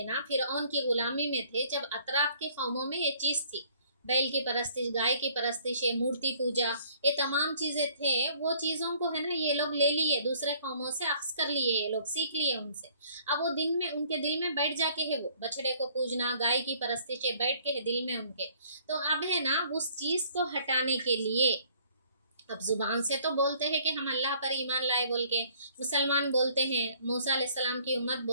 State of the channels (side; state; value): both; inverted; correlation -0.59